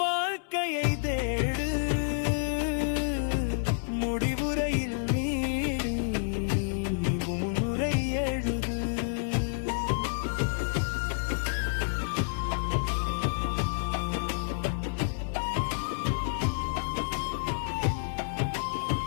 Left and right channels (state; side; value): silent; right; 58 dB below the other